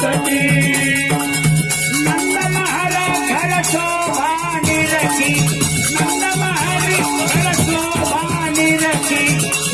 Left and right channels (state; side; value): noise; right; hum, 22 dB below the sound